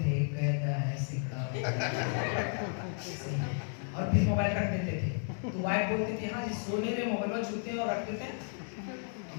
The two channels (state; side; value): silent; right; 56 dB below the other